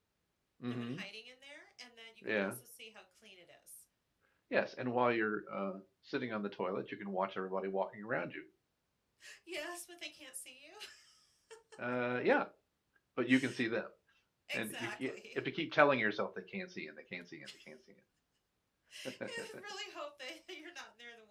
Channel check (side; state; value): both; identical; correlation 1.00